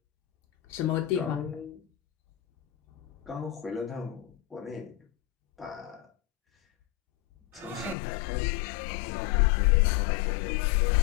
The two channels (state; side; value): drops out; right; at 8.0 s